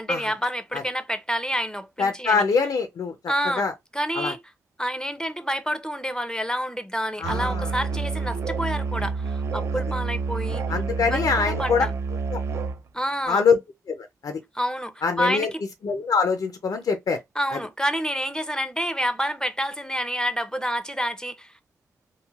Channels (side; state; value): both; normal; correlation 0.69